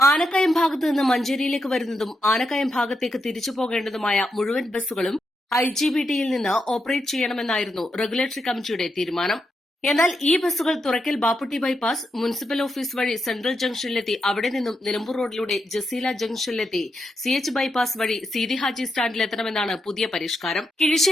ഭാഗത്തു നിന്ന് മഞ്ചേരിയിലേക്ക് വരുന്നതും ആനക്കയം ഭാഗത്തേക്ക് തിരിച്ചു പോകേണ്ടതുമായ മുഴുവൻ ബസ്സുകളും IGBTയിൽ നിന്ന് ഓപ്പറേറ്റ് ചെയ്യണമെന്നായിരുന്നു റെഗുലേറ്ററി കമ്മിറ്റിയുടെ തീരുമാനം. എന്നാൽ ഈ ബസ്സുകൾ തുറക്കൽ ബാപ്പുട്ടി ബൈപ്പാസ്, മുനിസിപ്പൽ ഓഫീസ് വഴി സെൻട്രൽ ജംഗ്ഷനിലെത്തി അവിടെ നിന്നും നിലമ്പൂർ റോഡിലൂടെ ജസീല ജംഗ്ഷനിലെത്തി CH ബൈപ്പാസ് വഴി സീതി ഹാജി സ്റ്റാൻഡിലെത്തണമെന്നാണ് പുതിയ പരിഷ്കാരം.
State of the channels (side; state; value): both; normal; correlation 0.84